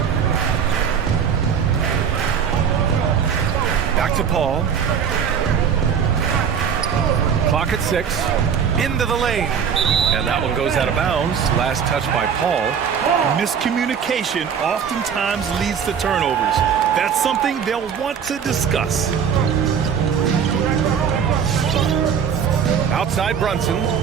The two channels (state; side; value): quieter; left; 7.3 dB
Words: Back to Paul. Clock at 6. Into the lane. And that one goes out of bounds. Last touch by Paul. Miscommunication oftentimes leads to turnovers. That's something they'll want to discuss. Outside Brunson.